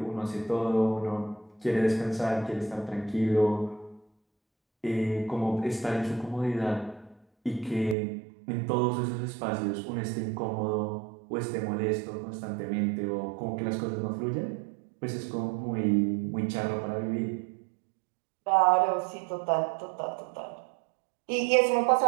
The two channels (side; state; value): left; drops out; at 8.0 s